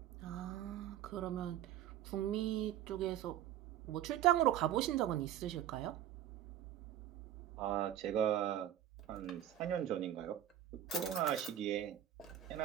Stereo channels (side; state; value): left; quieter; 11.6 dB